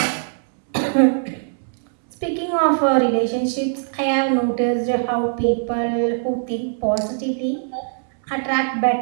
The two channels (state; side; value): silent; left; digital silence